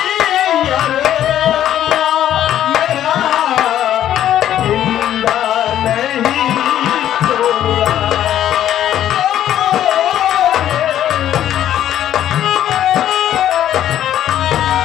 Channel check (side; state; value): right; quieter; 11.4 dB